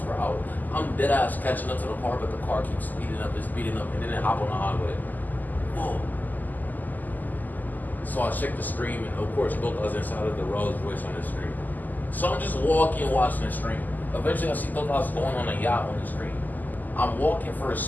per hour. I'm dead ass catching up to the car, but the car keeps speeding up, and then it hop on the highway. Whoa. So I check the screen, and of course, both us inside of the Rolls Royce on the screen. So I'm just walking, watching the screen. Eventually, I see both of us going on a yacht on the screen. I'm walking for a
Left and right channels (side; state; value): right; late; 0.084 ms